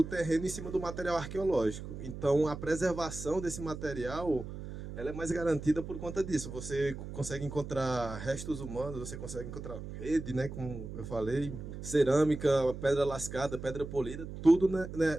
terreno em cima do material arqueológico. Então, a preservação desse material, ela é mais garantida por conta disso. Você consegue encontrar restos humanos, você consegue encontrar rede, né, como eu falei, cerâmica, pedra lascada, pedra polida, tudo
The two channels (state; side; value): noise; right; hum, 9 dB below the sound